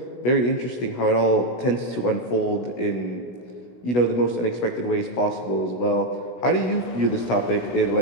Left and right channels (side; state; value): right; late; 16 ms